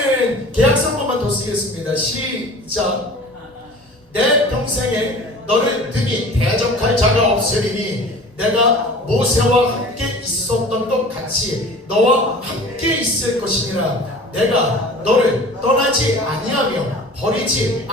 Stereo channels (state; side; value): normal; both; correlation 0.42